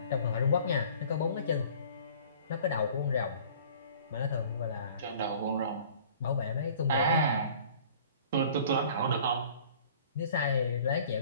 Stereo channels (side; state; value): both; inverted; correlation -0.49